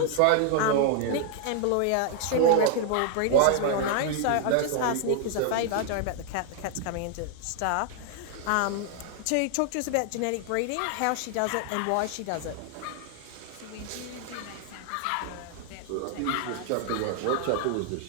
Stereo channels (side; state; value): both; different; correlation 0.00